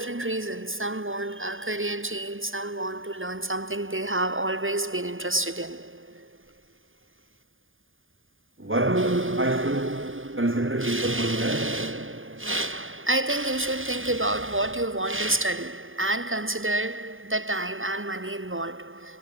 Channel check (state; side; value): late; left; 0.59 ms